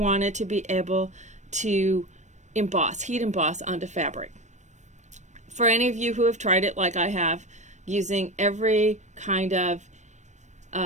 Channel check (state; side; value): late; left; 0.34 ms